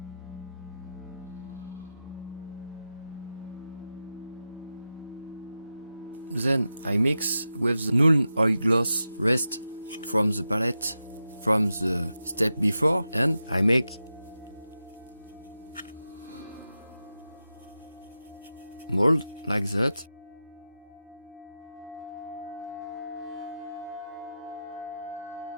Then I mix with the null oil gloss rest from the palette from the step before and I make mold like that.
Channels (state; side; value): inverted; both; correlation -0.90